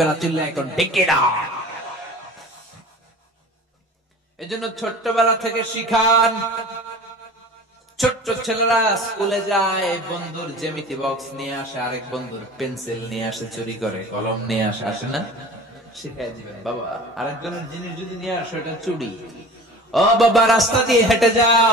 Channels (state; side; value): normal; both; correlation 0.40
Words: না। চিল্লা এখন ঠিক না? এজন্য ছোট্টবেলা থেকে শিখান। ছোট্ট ছেলেরা স্কুলে যায়, বন্ধুর জ্যামিতি বক্স নিয়ে আসে, আরেক বন্ধুর পেন্সিল নিয়ে আসে, চুরি করে কলম নিয়ে আসে, আসে না? শিখাই দিবেন, বাবা আরেকজনের জিনিস যদি নিয়ে আসো এটা চুরি। ও বাবা রাস্তা দিয়ে হেঁটে যাও,